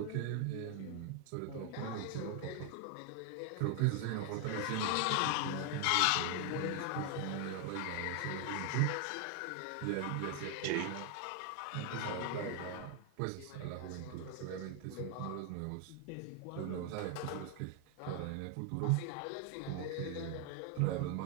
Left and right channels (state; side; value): different; both; correlation 0.00